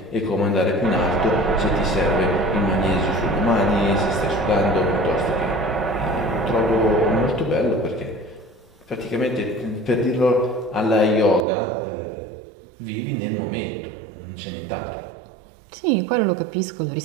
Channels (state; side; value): drops out; left; at 11.5 s